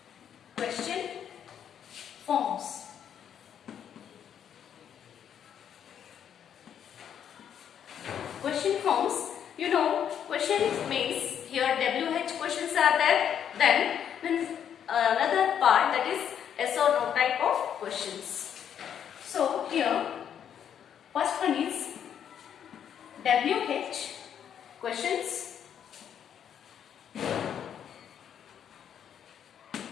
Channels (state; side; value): quieter; right; 8.9 dB